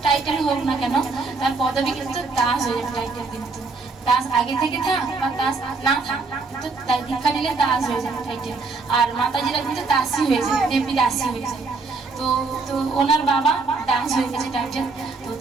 টাইটেল হোক না কেন তার পদবি কিন্তু দাস হয়ে যাবে। টাইটেল কিন্তু দাস আগে থেকে থাক বা দাস না থাক, কিন্তু দীক্ষা নিলে দাস হয়ে যাবে টাইটেল। আর মাতাজিরা কিন্তু দাসী হয়ে যায়, দেবী দাসী হয়ে যায়। তো তো ওনার বাবা দাস হয়ে গেছে টাইটেল।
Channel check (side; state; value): left; quieter; 4.0 dB